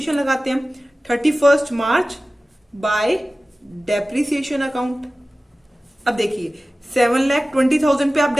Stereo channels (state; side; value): normal; both; correlation 0.96